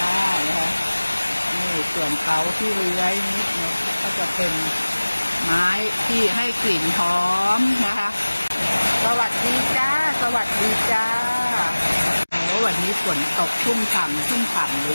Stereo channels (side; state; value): both; inverted; correlation -1.00